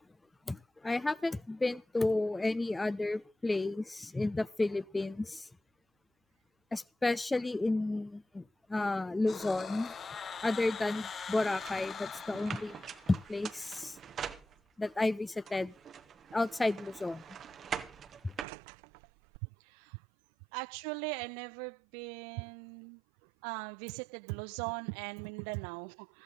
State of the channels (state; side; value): drops out; left; at 18.4 s